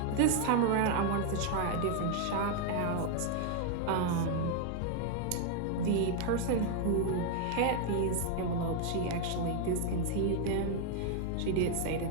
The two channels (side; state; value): both; different; correlation 0.00